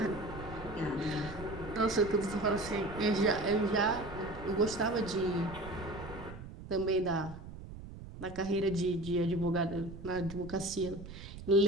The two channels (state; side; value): noise; right; rumble, 13 dB below the sound